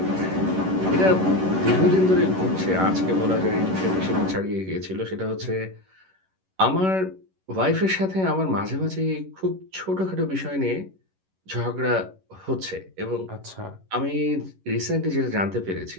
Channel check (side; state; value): left; late; 11 ms